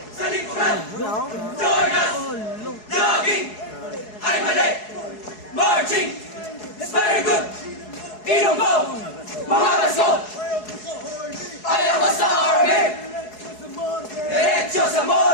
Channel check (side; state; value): right; late; 4.7 ms